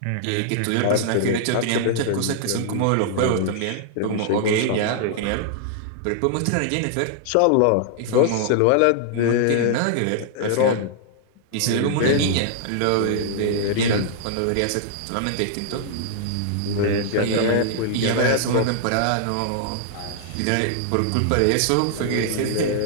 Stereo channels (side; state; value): both; different; correlation -0.01